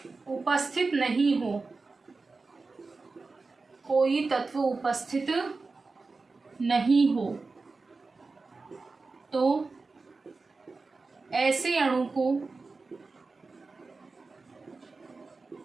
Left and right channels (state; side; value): quieter; left; 3.9 dB